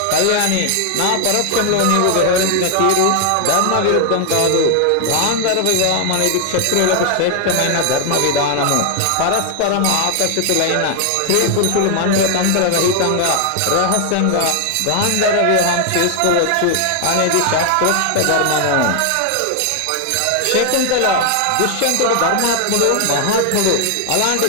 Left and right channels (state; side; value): different; both; correlation 0.00